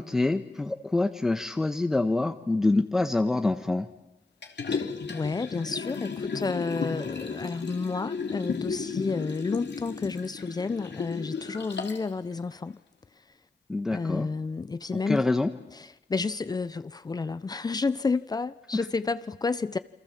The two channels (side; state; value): right; quieter; 3.2 dB